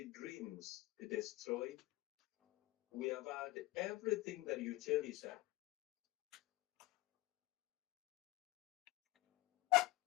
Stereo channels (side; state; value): right; quieter; 19.4 dB